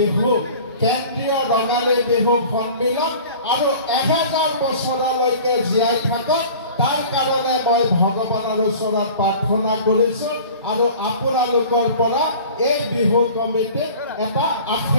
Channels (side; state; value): both; inverted; correlation -0.43